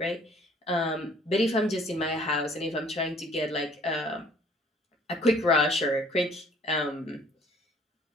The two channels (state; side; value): normal; both; correlation 0.57